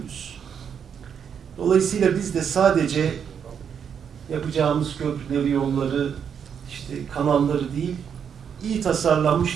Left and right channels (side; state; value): left; quieter; 7.6 dB